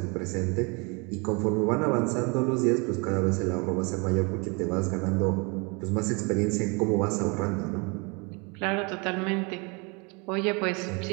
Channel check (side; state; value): left; quieter; 30.6 dB